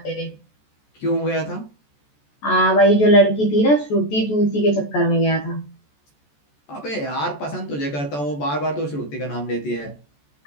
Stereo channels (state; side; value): late; right; 14 ms